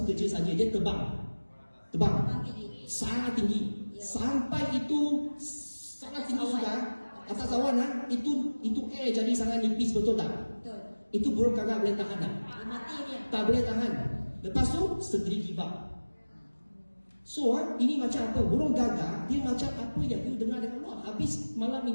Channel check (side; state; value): both; inverted; correlation -1.00